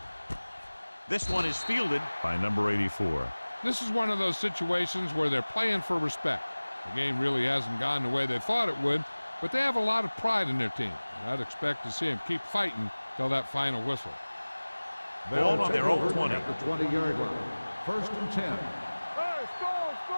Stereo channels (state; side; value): inverted; both; correlation -1.00